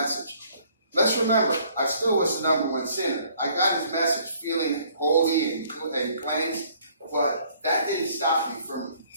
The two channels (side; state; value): both; inverted; correlation -0.61